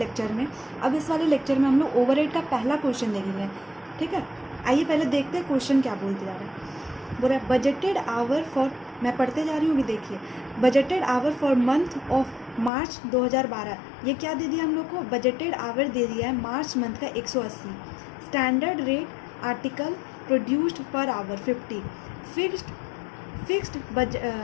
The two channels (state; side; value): drops out; right; at 12.7 s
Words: में। अब इस वाले लेक्चर में हम लोग ओवरहेड का पहला क्वेश्चन देखेंगे। ठीक है, आइए पहले देखते हैं क्वेश्चन क्या बोलते जा रहा है। बोल रहा है बजटेड आवर फॉर, मैं पढ़ते जा रही हूँ, भी देखिए। Budgeted hour for month of March 2012। ये क्या दे दिया हम लोग को? बजटेड आवर दे दिया है मार्च मंथ का 180। Standard rate article produced per hour 50। Fixed